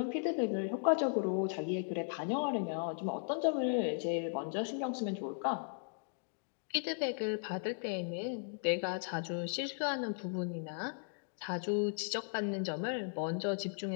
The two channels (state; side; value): silent; right; digital silence